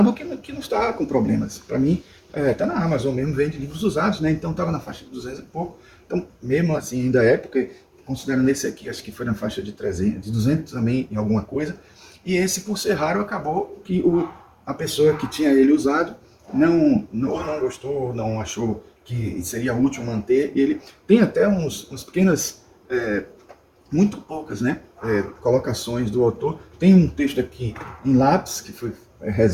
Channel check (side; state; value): both; identical; correlation 1.00